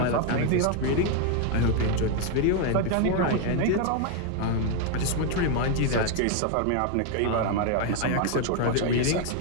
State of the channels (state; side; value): different; both; correlation 0.01